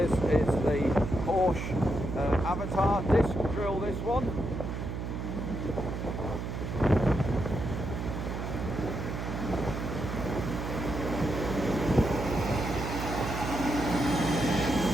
is the Horsch Avatar disc drill, this one.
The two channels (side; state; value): right; noise; hum, 4 dB below the sound